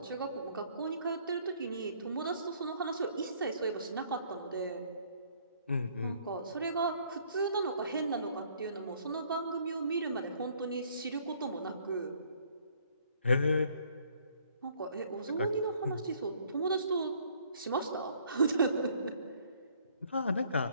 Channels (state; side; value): inverted; both; correlation -0.62